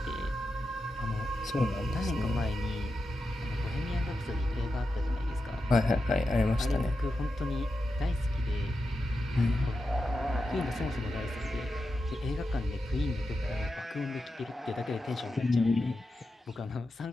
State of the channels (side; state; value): both; normal; correlation 0.89